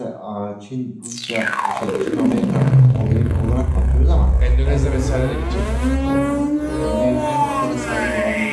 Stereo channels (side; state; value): both; identical; correlation 1.00